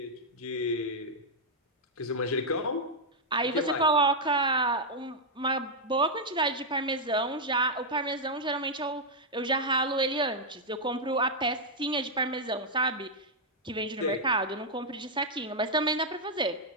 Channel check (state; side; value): normal; both; correlation -0.03